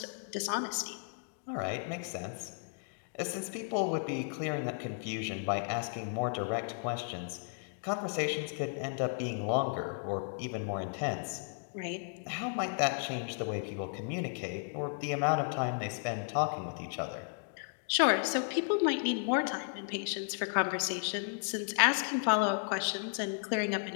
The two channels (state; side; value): silent; right; digital silence